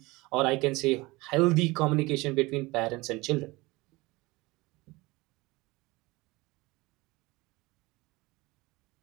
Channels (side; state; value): left; quieter; 22.2 dB